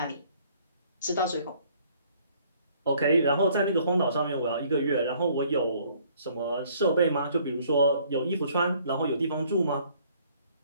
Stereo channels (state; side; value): inverted; both; correlation -0.60